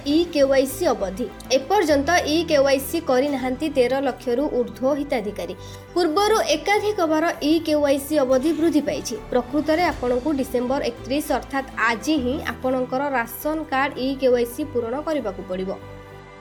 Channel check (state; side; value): identical; both; correlation 1.00